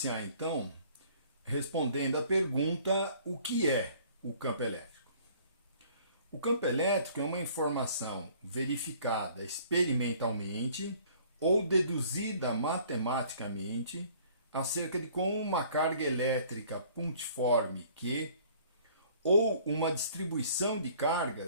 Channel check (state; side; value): inverted; both; correlation -0.55